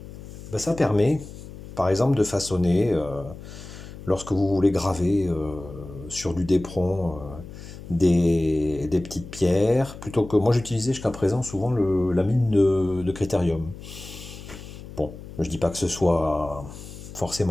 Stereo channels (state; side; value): noise; left; hum, 14 dB below the sound